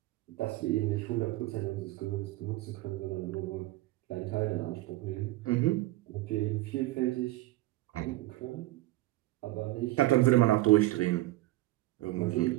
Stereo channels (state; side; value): quieter; left; 18.0 dB